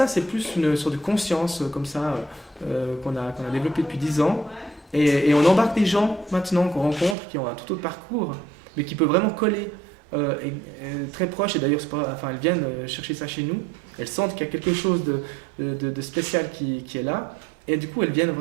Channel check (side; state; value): left; drops out; at 7.2 s